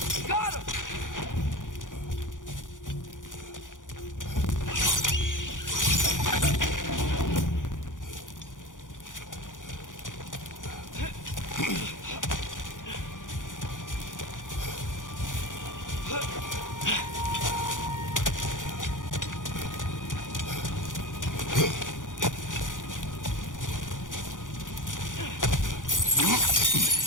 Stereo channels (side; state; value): right; late; 0.88 ms